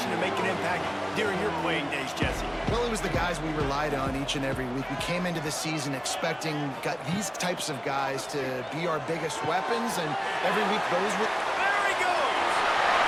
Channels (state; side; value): identical; both; correlation 1.00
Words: to make an impact during your playing days, Jesse? Well, it was the guys we relied on each and every week. We came into the season expecting these types of guys to be our biggest weapons, and every week those were... There he goes!